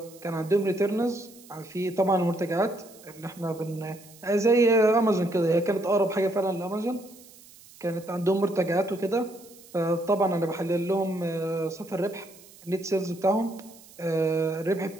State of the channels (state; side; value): noise; right; hiss, 22 dB below the sound